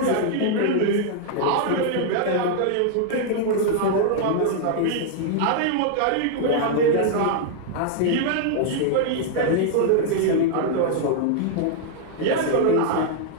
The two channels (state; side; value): different; both; correlation -0.01